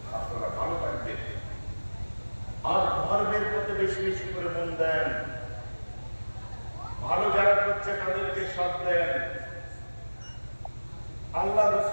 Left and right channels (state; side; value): inverted; both; correlation -1.00